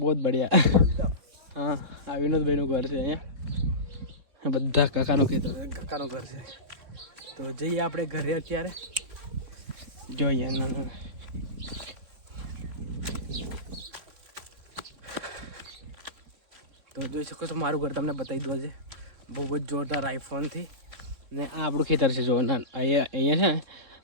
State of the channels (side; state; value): left; late; 3.6 ms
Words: જ બઢિયા. હા આ વિનોદભાઈનું ઘર છે અહીંયા. બધા કાકાનું ખેતર કાકાનું ઘર છે. તો જઈએ આપણે ઘરે અત્યારે. જો અહીંયા ના તો જોઈ શકો છો મારું ઘર તમને બતાવી દો છે બહુ જ જોરદાર આઈફોનથી. ને આ આપણું ખેતર છે. જો અહીંયા છે ને